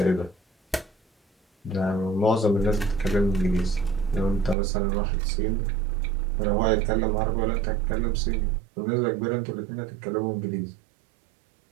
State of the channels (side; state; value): left; drops out; at 4.5 s